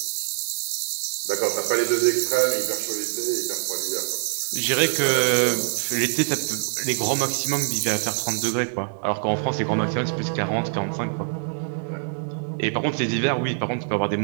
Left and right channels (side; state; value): left; silent; digital silence